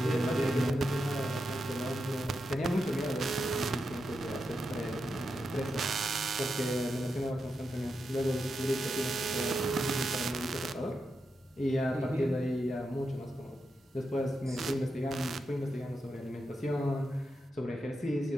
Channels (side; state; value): both; normal; correlation 0.87